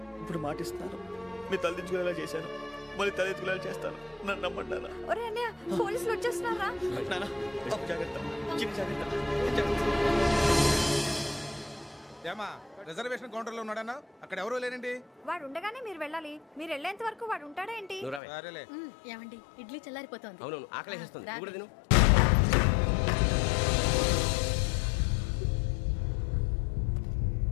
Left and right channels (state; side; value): drops out; right; at 18.2 s